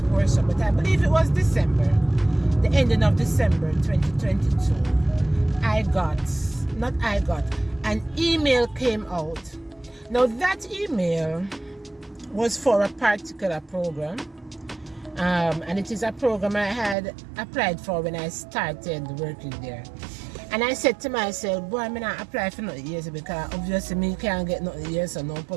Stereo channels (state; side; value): drops out; left; at 16.9 s